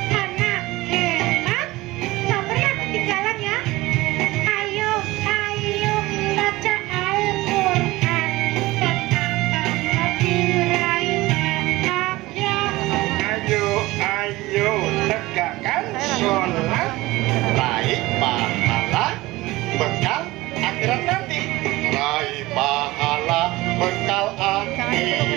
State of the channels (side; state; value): left; quieter; 19.5 dB